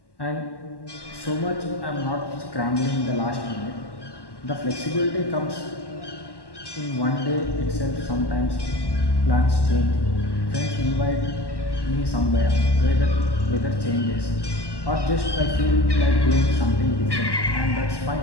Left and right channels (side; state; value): right; late; 1.1 ms